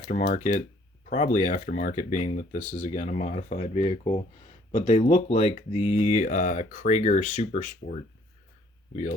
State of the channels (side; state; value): both; normal; correlation 0.61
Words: Probably aftermarket, being that this is, again, a modified vehicle. But they look like the Krager Super Sport